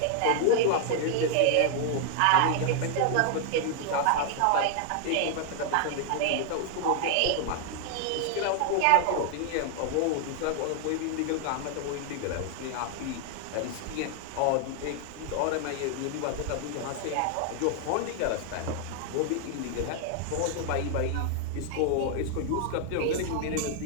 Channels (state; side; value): different; both; correlation 0.00